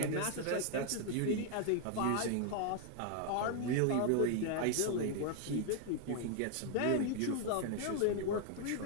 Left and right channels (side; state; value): both; different; correlation 0.00